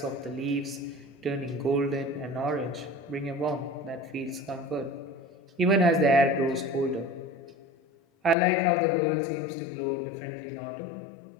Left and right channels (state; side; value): drops out; right; at 8.3 s